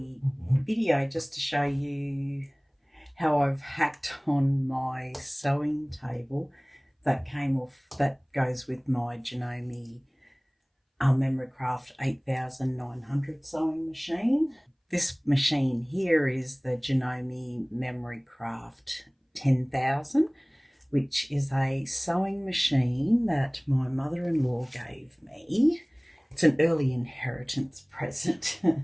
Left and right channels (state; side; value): identical; both; correlation 1.00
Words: video just to show you how I've hacked on my sewing table that goes with my Janome Memorycraft 8900 sewing machine. This machine here is the Janome Memorycraft 10,000, which is a sewing machine that my mother-in-law gave me. It's an early inheritance present.